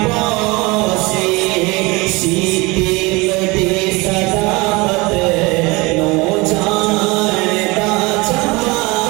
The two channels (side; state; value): left; quieter; 24.6 dB